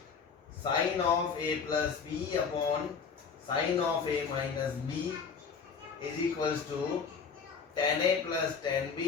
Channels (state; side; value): quieter; right; 5.9 dB